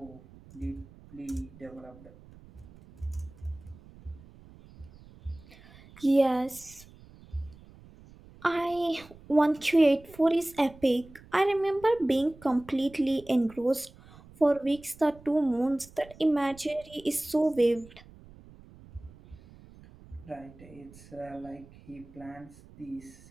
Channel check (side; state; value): right; noise; rumble, 22 dB below the sound